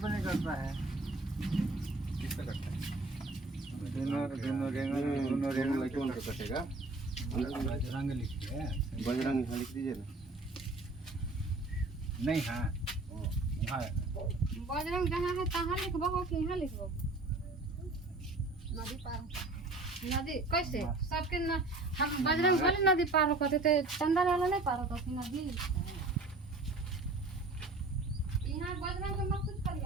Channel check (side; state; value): left; quieter; 3.1 dB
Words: नहीं करता है। किससे कटता है? दोनों रेंग कौन सा कटेगा? बजरंग लिखिए। बजरंग लिख दीजिए ना। नहीं हाँ हाँ बजरंग जहाँ है तहाँ लिखबो कि यहाँ लिखबो? नदी पार नदी कैसे सबके न, हम बजरंग वाली नदी पार होते थे, चंदा वाला नहीं पार होता थी नदी। यहाँ बजरंग के मत कुछ